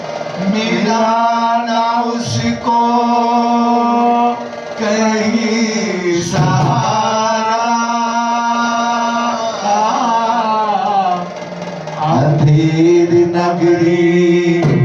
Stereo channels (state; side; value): identical; both; correlation 1.00